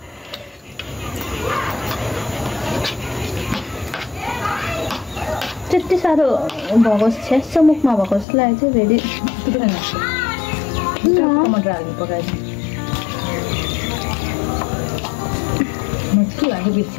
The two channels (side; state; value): right; drops out; at 8.2 s